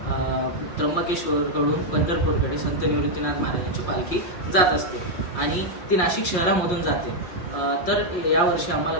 त्र्यंबकेश्वरकडून पंढरपूरकडे संत निवृत्तीनाथ महाराजांची पालखी जात असते आणि ती नाशिक शहरामधून जाते. तर यावर्षी आम्हाला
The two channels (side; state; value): right; late; 5.6 ms